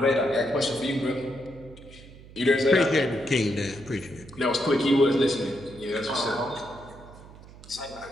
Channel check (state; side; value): noise; right; hum, 19 dB below the sound